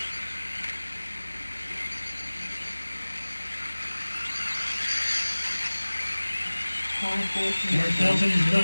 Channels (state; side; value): inverted; both; correlation -1.00